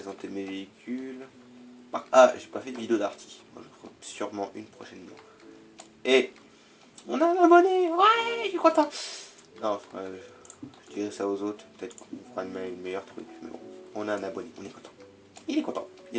mes véhicules. Ah, j'ai pas fait de vidéo d'arty. Moi, je ferai sûrement une prochainement. Et on a un abonné. Ouais, je suis content. Non, je dirais ça aux autres. Peut-être qu'on fera une meilleure truc. Mais bon, on a un abonné, on est content. Il est content.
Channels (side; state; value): both; identical; correlation 1.00